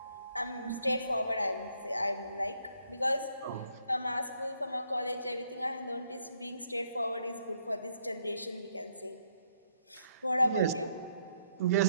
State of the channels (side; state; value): both; inverted; correlation -0.72